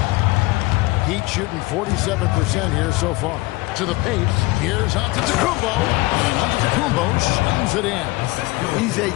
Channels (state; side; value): quieter; right; 21.9 dB